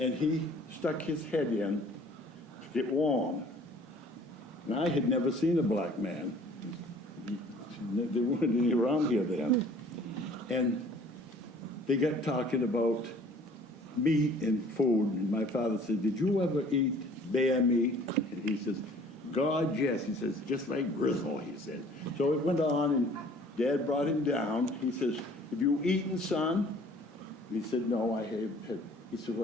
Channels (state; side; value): normal; both; correlation 0.52